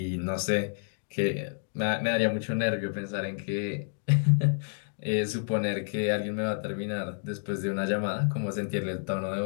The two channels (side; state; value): right; silent; digital silence